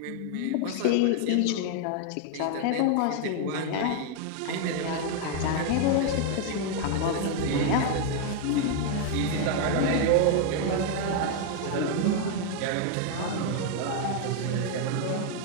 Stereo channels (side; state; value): both; different; correlation 0.00